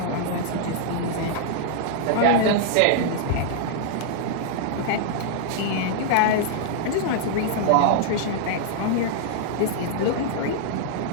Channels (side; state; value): both; different; correlation -0.01